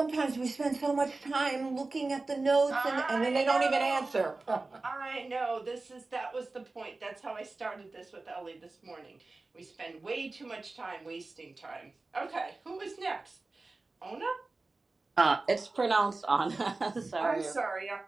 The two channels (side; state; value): left; quieter; 3.4 dB